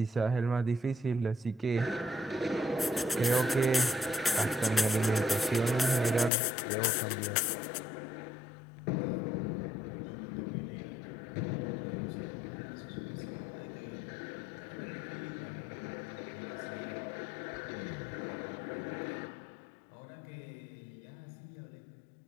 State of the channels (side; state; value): right; drops out; at 6.3 s